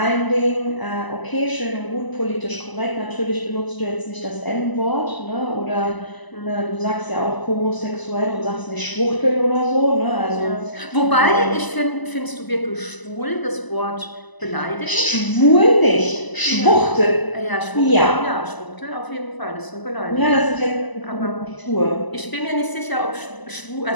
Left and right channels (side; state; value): right; late; 1.0 ms